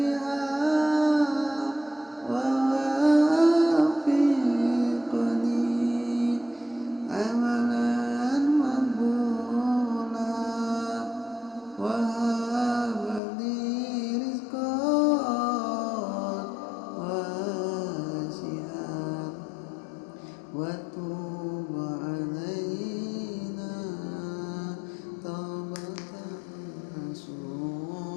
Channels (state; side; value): drops out; right; at 13.2 s